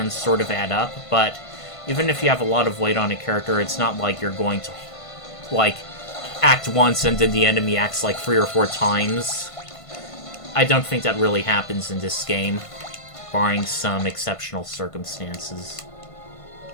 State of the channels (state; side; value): late; right; 1.5 ms